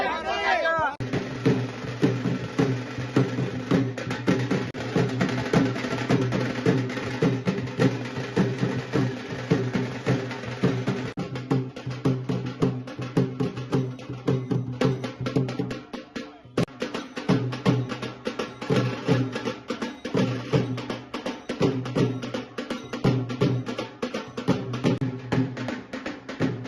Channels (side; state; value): both; identical; correlation 1.00